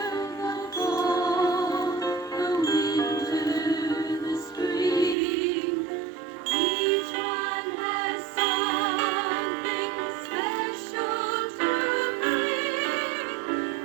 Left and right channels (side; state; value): left; drops out; at 5.2 s